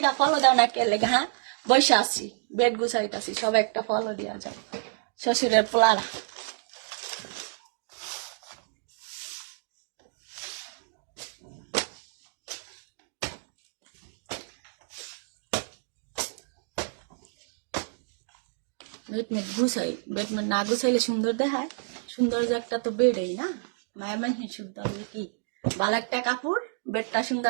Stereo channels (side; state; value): left; silent; digital silence